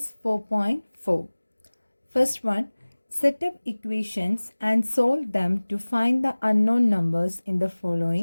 4.4. First one, set up equations and solve them to find the unknown numbers in the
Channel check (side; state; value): both; inverted; correlation -1.00